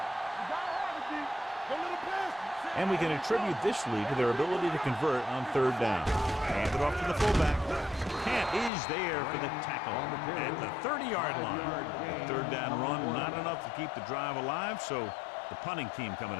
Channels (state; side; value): drops out; right; at 8.7 s